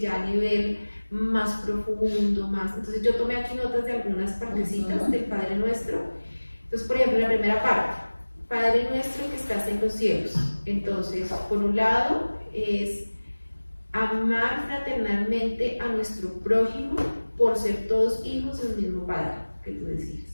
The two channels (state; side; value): inverted; both; correlation -1.00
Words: a nivel más profundo, más. Entonces yo tomé aquí notas de algunas partecitas del Padre Nuestro. Entonces, por ejemplo, la primera parte, Padre Nuestro que estás en los cielos. Entonces, por un lado es amar fraternalmente a nuestro prójimo por ser todos hijos del mismo Padre, que tú decías,